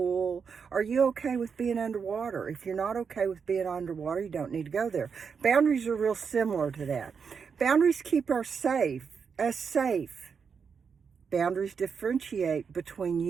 Are you okay with being underwater? If you're not okay with being underwater, you don't need to go there. Boundaries are real similar to that. Boundaries keep us safe. Boundaries differentiate between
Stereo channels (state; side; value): quieter; left; 6.1 dB